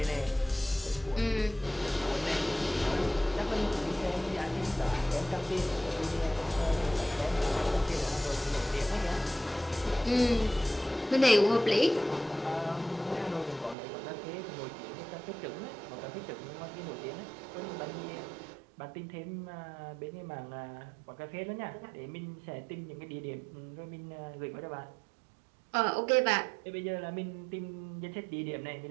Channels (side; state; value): left; drops out; at 13.8 s